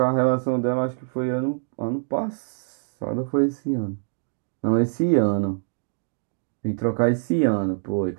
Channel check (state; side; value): silent; left; digital silence